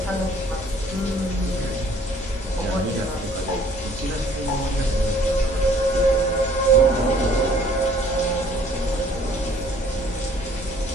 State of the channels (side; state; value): both; normal; correlation 0.58